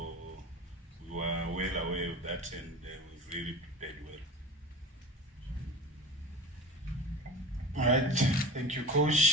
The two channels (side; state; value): both; normal; correlation 0.33